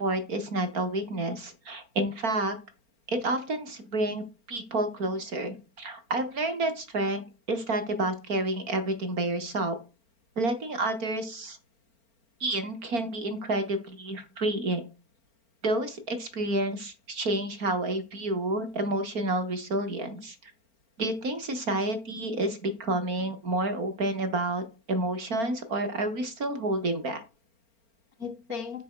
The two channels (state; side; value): late; left; 4.4 ms